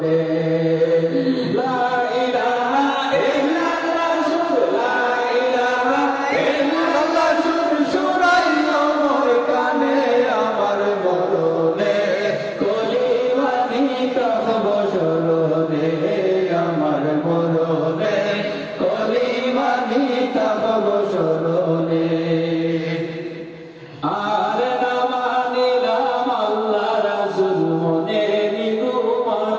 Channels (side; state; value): both; identical; correlation 1.00